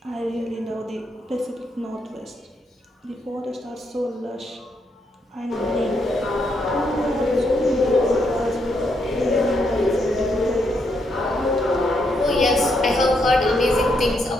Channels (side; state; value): both; normal; correlation 0.77